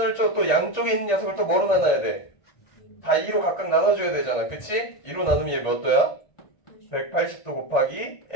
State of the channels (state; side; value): late; right; 1.9 ms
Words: 또 양쪽에 있는 녀석을 또 뭐로 나눠야 돼? 다 2로 각각 나눠줘야 되잖아. 그치? 2로 나누면 얘 몇 도야? 180도 곱하기